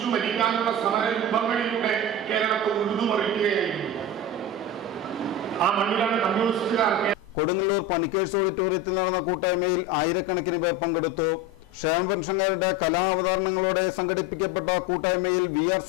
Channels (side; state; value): both; normal; correlation 0.25